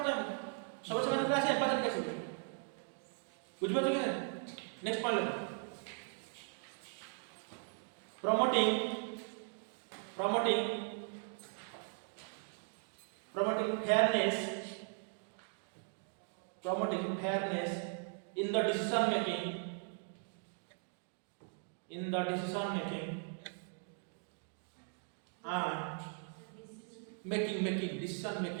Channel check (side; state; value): left; silent; 52 dB below the other